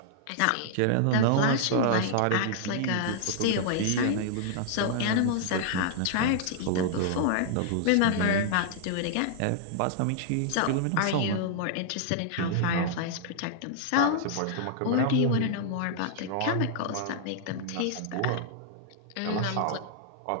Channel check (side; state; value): both; different; correlation -0.01